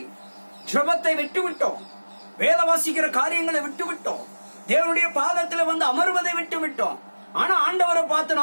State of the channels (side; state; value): both; inverted; correlation -1.00